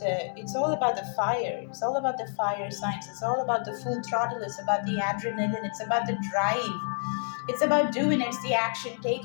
fire. It's all about the fire signs. It's all about the full throttle. It's about the adrenaline. It's about the drive. It's about doing. It's the action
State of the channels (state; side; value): silent; right; 59 dB below the other